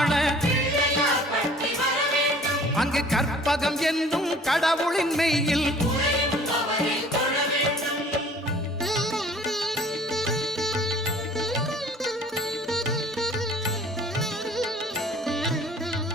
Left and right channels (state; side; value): normal; both; correlation 0.51